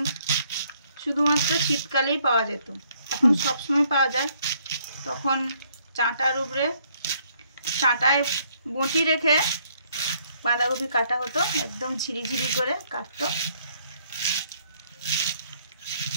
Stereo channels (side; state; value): both; inverted; correlation -0.67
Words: শুধুমাত্র শীতকালেই পাওয়া যেত, এখন সবসময় পাওয়া যায়। তখন চাটার উপরে চাটায় বঁটি রেখে বাঁধাকপি কাটা হতো, একদম ঝিরিঝিরি করে কাটতো।